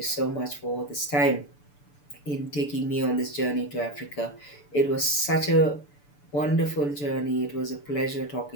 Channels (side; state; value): right; late; 6.9 ms